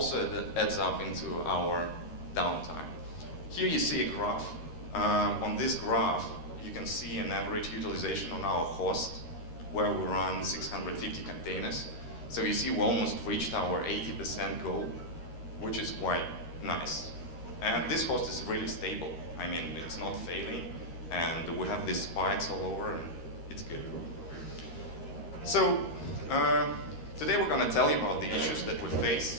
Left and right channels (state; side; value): late; right; 13 ms